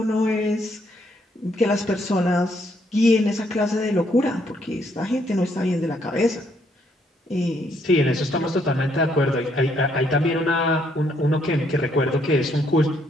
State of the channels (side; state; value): both; normal; correlation 0.71